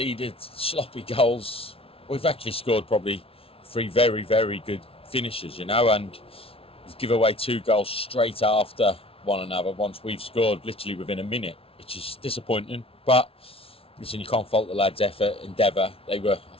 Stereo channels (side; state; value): right; late; 0.27 ms